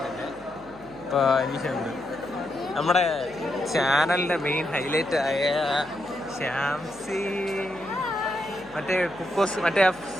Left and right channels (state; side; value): noise; left; hum, 23 dB below the sound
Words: അനീഷ ഉണ്ട്. നമ്മുടെ ചാനലിന്റെ മെയിൻ ഹൈലൈറ്റ് ആയ ശ്യാംസി, മറ്റേ കുക്കോസ്, മറ്റേ